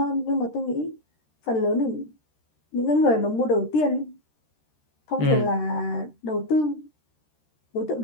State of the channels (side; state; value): right; late; 13 ms